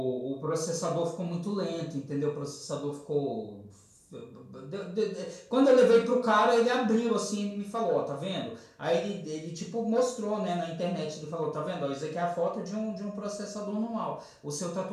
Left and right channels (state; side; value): identical; both; correlation 1.00